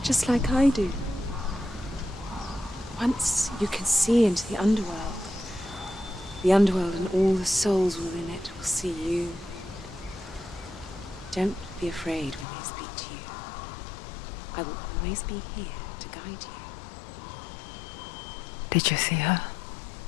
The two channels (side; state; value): right; drops out; at 12.5 s